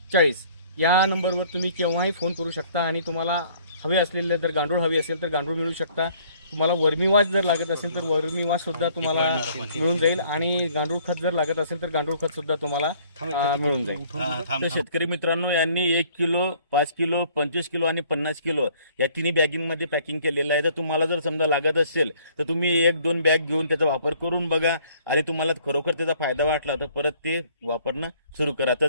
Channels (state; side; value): inverted; both; correlation -0.59